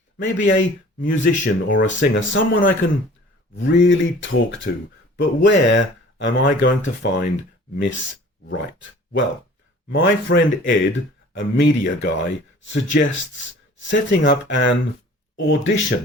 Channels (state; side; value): normal; both; correlation 0.48